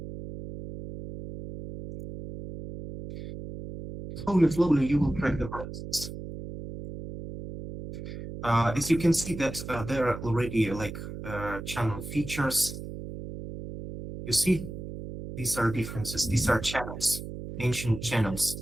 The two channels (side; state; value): right; noise; hum, 9 dB below the sound